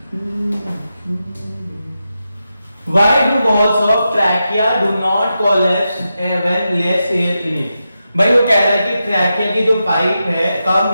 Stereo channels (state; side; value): inverted; both; correlation -0.89